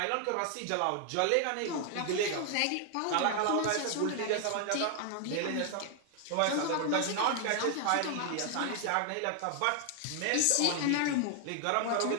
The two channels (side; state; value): both; different; correlation 0.00